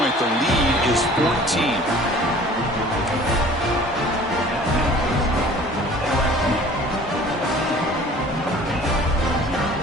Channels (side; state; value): both; normal; correlation 0.48